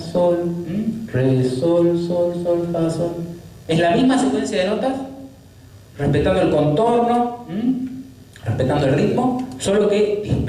re, sol, sol, sol, fa, sol. Es la misma secuencia de notas, respetando el contorno, respetando el ritmo, solo que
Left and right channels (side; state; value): both; identical; correlation 1.00